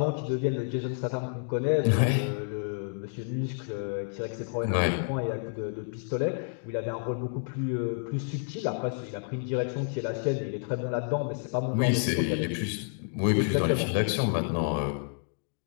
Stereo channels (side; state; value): right; silent; digital silence